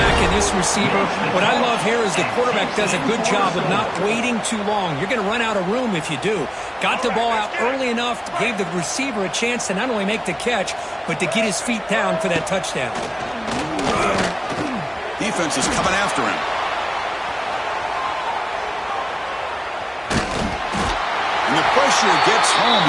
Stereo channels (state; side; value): identical; both; correlation 1.00